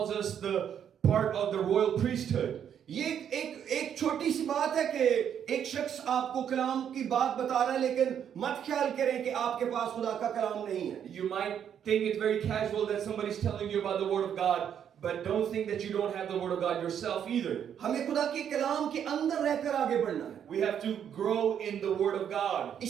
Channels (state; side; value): quieter; left; 8.8 dB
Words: us the part of the royal priesthood. ये एक छोटी सी बात है कि एक शख्स आपको कलाम की बात बता रहा है, लेकिन मत ख्याल करें कि आपके पास खुदा का कलाम नहीं है. You might think it's very casual that somebody's telling you about the Word of God, but don't think that you don't have the Word of God yourself either. हमें खुदा के कलाम के अंदर रहकर आगे बढ़ना है. We have to grow in the Word of God.